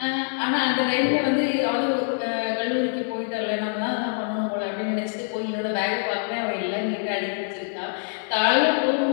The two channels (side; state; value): right; silent; 62 dB below the other